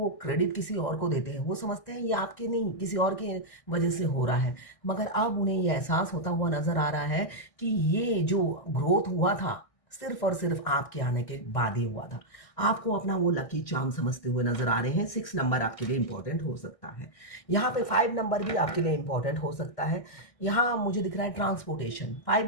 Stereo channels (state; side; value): late; right; 1.6 ms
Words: क्रेडिट किसी और को देते हैं। वो समझते हैं ये आपके नहीं, किसी और की वजह से हो रहा है। मगर अब उन्हें ये एहसास होता हुआ नज़र आ रहा है कि ये जो ग्रोथ हुआ था, सिर्फ़ और सिर्फ़ आपके आने के बाद ही हुआ था। आपको अपना वो लकी चार्म समझते हुए नज़र आ रहे हैं। 6 नंबर आपके लिए इम्पोर्टेंट हो सकता है। यहाँ पे 5 नंबर भी आपके लिए इम्पोर्टेंट हो सकता है। यहाँ मुझे दिख रहा है ट्रांसपोर्टेशन। 5